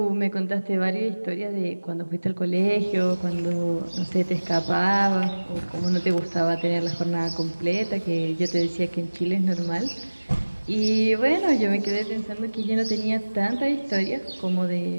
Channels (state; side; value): inverted; both; correlation -1.00